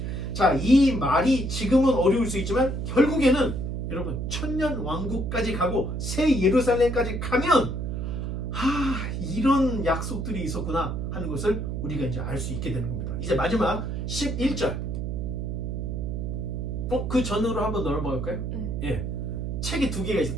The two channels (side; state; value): right; noise; hum, 3 dB below the sound